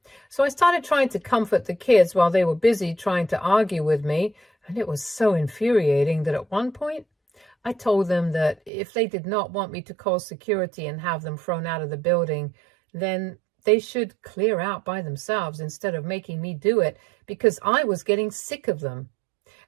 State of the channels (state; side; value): drops out; left; at 8.7 s